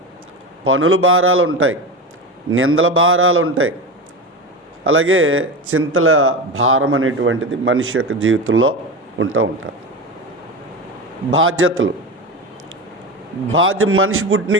పనుల భారాలు ఉంటాయి, నిందల భారాలు ఉంటాయి, అలాగే చింతల భారం అనేటువంటిది మనిషి యొక్క జీవితంలో ఉంటుంది. బాధ్యతలు, మనిషి పుట్టిన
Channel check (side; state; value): both; normal; correlation 0.23